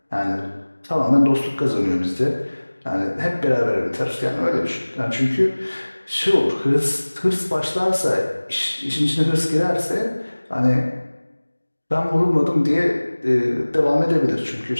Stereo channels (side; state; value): both; inverted; correlation -1.00